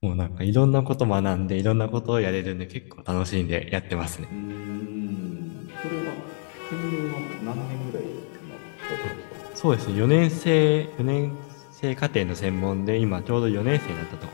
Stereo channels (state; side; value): silent; right; digital silence